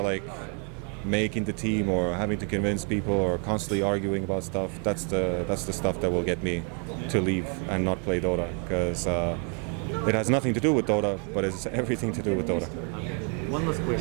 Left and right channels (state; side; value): quieter; left; 38.8 dB